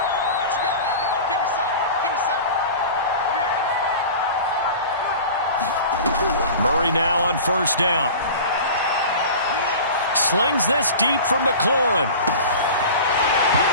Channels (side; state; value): both; inverted; correlation -0.36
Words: Murray now on first down. Slings this deep for McLaurin.